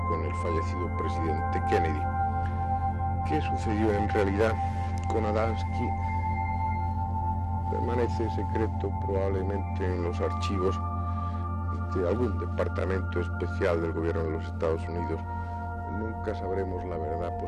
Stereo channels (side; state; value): both; identical; correlation 1.00